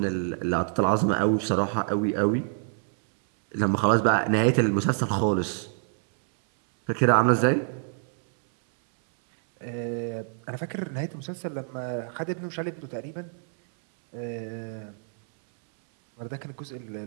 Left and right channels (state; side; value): silent; left; 60 dB below the other